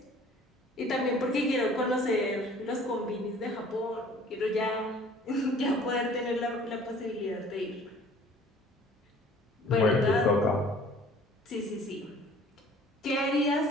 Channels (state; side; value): normal; both; correlation 0.51